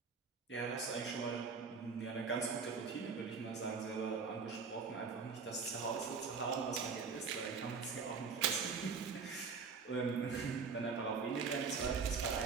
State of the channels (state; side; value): quieter; left; 5.3 dB